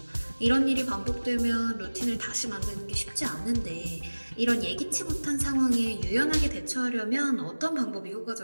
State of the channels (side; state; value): both; inverted; correlation -1.00